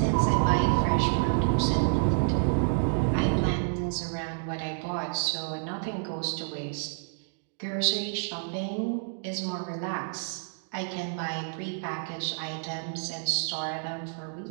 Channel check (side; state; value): left; silent; digital silence